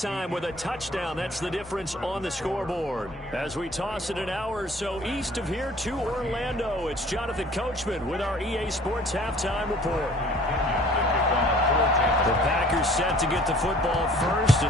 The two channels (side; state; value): both; normal; correlation 0.52